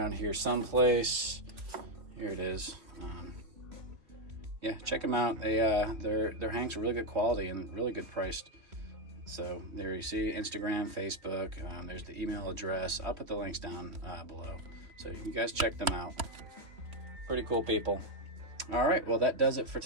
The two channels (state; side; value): late; left; 2.9 ms